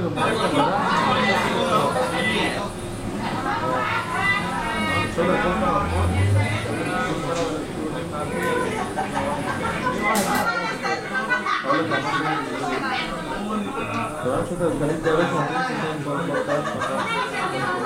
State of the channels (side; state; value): both; identical; correlation 1.00